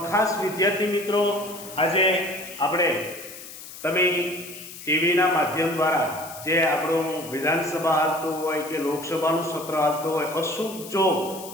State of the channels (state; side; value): noise; left; hiss, 14 dB below the sound